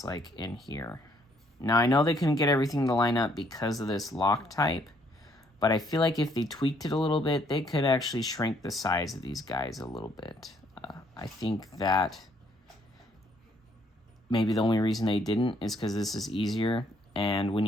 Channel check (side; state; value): both; normal; correlation 0.67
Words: like in here. Now, I know they couldn't get everything to line up because of this lock type, but I feel like if they tweaked it a little bit, they could actually shrink the size of these guys a little bit. I think that maybe the only reason they didn't is because this is easier, and when